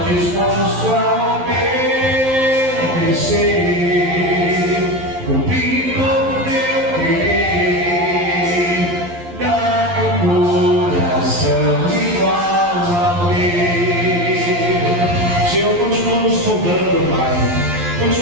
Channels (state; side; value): late; left; 11 ms